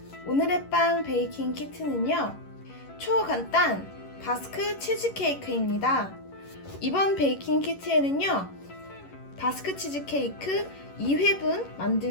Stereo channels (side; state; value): right; late; 11 ms